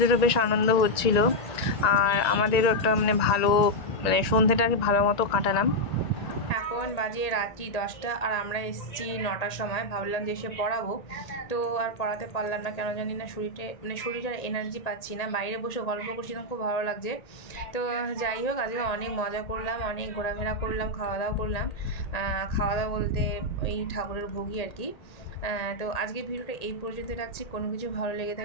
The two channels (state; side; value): late; right; 1.9 ms